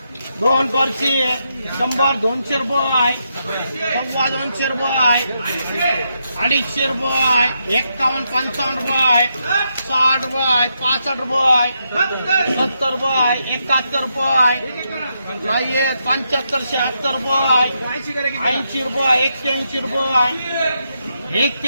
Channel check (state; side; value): inverted; both; correlation -0.82